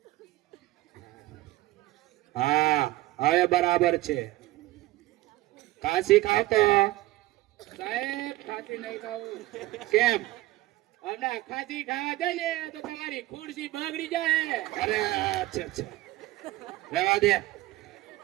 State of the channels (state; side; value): quieter; left; 18.0 dB